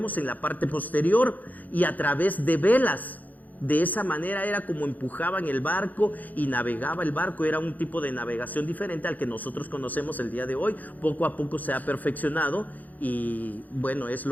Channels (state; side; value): late; right; 0.081 ms